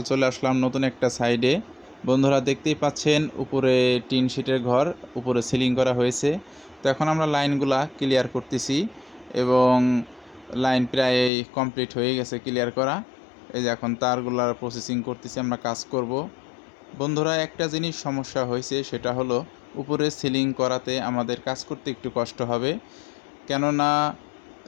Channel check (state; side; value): drops out; right; at 11.3 s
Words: চলে আসলাম নতুন একটা সাইডে। বন্ধুরা দেখতেই পাচ্ছেন উপরে টিন শিটের ঘর, উপরে সিলিং করা হয়েছে। তো এখন আমরা লাইনগুলা ক্লিয়ার করতেছি এবং লাইন প্রায় কমপ্লিট হয়ে গেছে ক্লিয়ার করা। এই যে এখন তারগুলার প্রসেসিং করতেছি, আমরা কাজ করব। বন্ধুরা একটা জিনিস সমস্যা হয়েছে, সেটা হলো উপরে সিলিং করাতে আমাদের কাজ করতে একটু কষ্ট হবে। কেননা